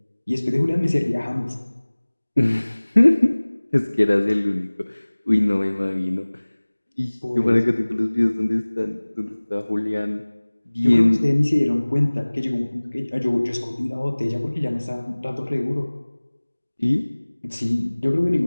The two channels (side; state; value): both; inverted; correlation -1.00